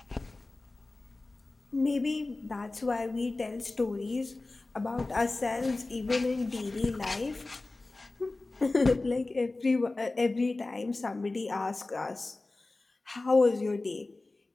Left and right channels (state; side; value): quieter; right; 3.2 dB